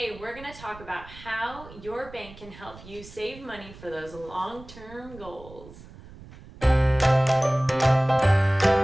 we're going to talk about how your bank can help you save money for those long-term goals. So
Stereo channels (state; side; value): noise; right; rumble, 19 dB below the sound